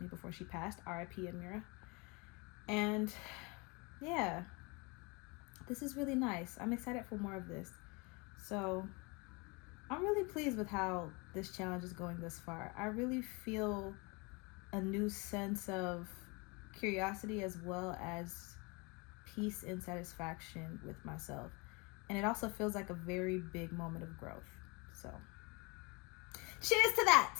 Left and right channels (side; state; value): right; quieter; 28.7 dB